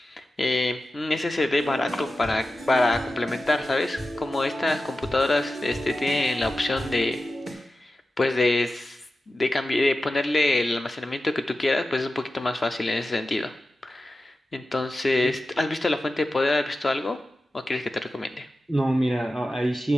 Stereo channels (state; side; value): normal; both; correlation 0.93